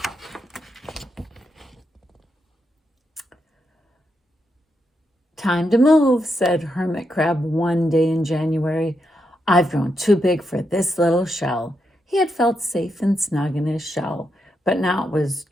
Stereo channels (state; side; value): normal; both; correlation 0.82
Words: Time to move, said Hermit Crab one day in January. I've grown too big for this little shell. He had felt safe and snug in his shell, but now it was